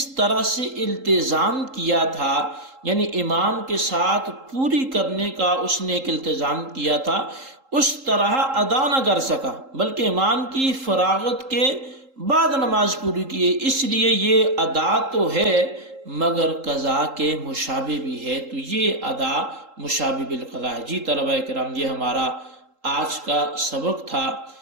طرح سے التزام کیا تھا، یعنی امام کے ساتھ پوری کرنے کا اس نے ایک التزام کیا تھا، اس طرح ادا نہ کر سکا، بلکہ امام کی فراغت کے بعد نماز پوری کی، اس لیے یہ ادا تو ہے مگر قضا کے مشابہ بھی ہے، تو یہ ادا مشابہ بالقضا ہے۔ جی طلبہ کرام، یہ ہمارا آج کا سبق تھا،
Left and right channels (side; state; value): left; late; 3.8 ms